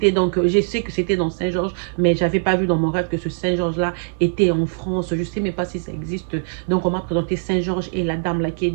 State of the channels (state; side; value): silent; left; 65 dB below the other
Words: donc, je sais que c'était dans Saint-Georges, mais je n'avais pas vu dans mon rêve que ce Saint-Georges-là était en France. Je ne sais même pas si ça existe. Donc, on m'a présenté Saint-Georges et la dame là qui est